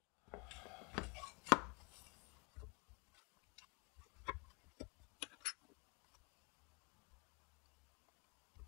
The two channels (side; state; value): right; quieter; 31.3 dB